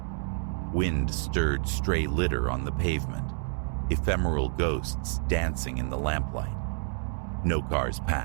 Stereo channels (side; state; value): left; silent; 59 dB below the other